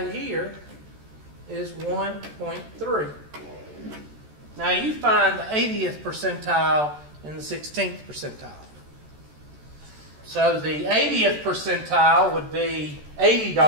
here is 1.3. Now, you find the 80th percentile and the 16th percentile. So, the 80th percentile would be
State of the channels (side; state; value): left; late; 14 ms